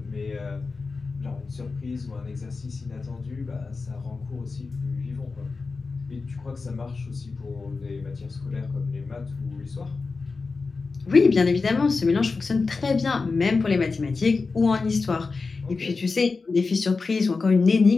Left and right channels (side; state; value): right; quieter; 4.2 dB